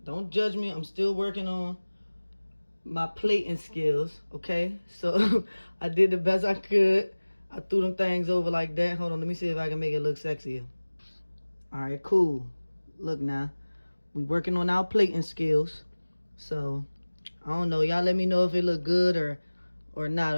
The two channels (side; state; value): both; inverted; correlation -1.00